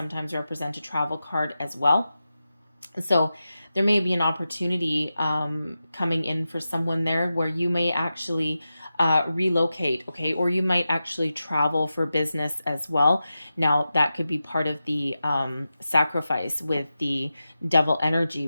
represent a travel card as well. So there may be an opportunity coming in for someone there where you may actually relocate, okay? Or you might actually travel for business as well. Now, that could be part of the sacrifice with the devil energy,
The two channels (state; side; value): inverted; both; correlation -0.92